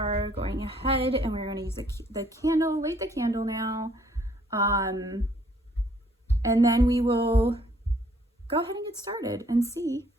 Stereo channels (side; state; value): both; normal; correlation 0.63